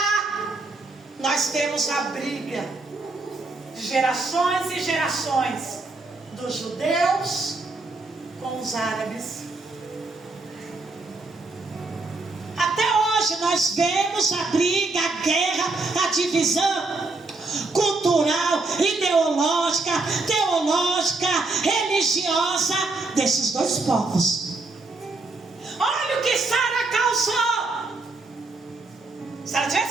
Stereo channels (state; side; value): quieter; left; 3.4 dB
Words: nós temos a briga de gerações e gerações dos judeus com os árabes. Até hoje nós vemos a briga, a guerra, a divisão cultural, ideológica, teológica, religiosa desses dois povos. Olha o que Sara causou. Se ela